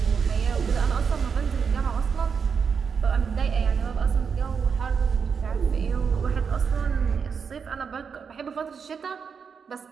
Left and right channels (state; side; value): quieter; left; 6.2 dB